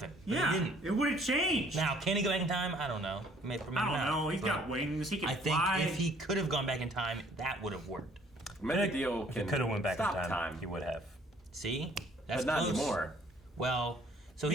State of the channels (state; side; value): normal; both; correlation 0.59